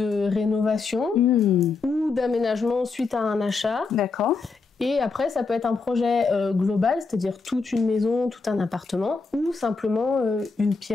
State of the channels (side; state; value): right; quieter; 4.3 dB